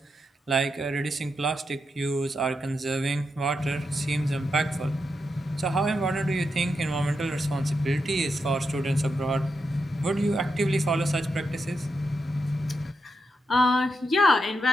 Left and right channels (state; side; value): normal; both; correlation 0.85